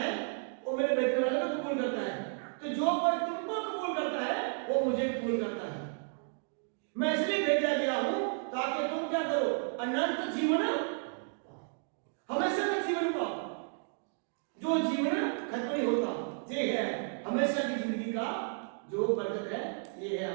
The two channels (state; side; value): silent; left; 56 dB below the other